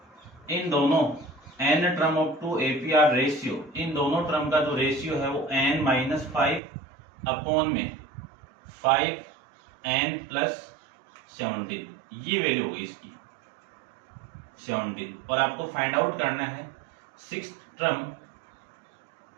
इन दोनों n term of 2 AP R ratio, इन दोनों टर्म का जो रेशियो है वो n-5 अपॉन में 5n प्लस 17, ये वैल्यू होगी इसकी 17। और आपको फाइंड आउट करना है six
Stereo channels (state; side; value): drops out; left; at 6.6 s